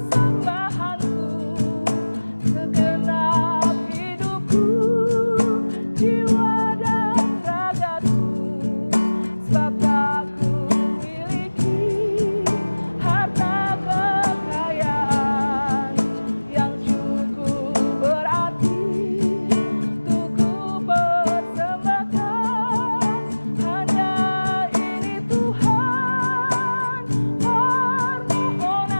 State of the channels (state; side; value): inverted; both; correlation -1.00